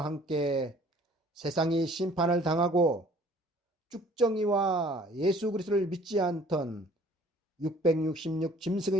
함께 세상이 심판을 당하고 쭉정이와 예수 그리스도를 믿지 않던 666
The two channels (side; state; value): both; normal; correlation 0.54